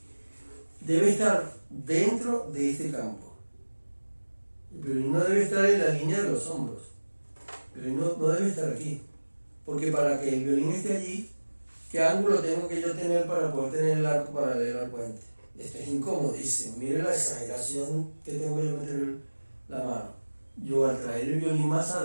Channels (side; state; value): both; inverted; correlation -1.00